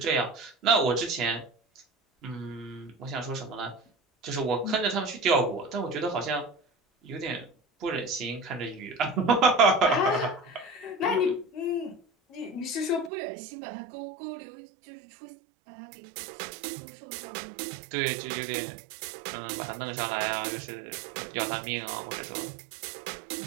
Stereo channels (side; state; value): left; drops out; at 13.1 s